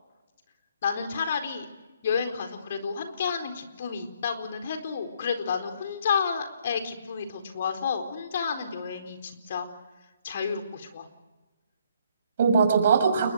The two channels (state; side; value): inverted; both; correlation -0.66